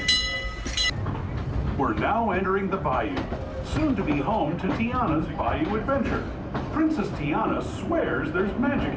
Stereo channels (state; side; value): identical; both; correlation 1.00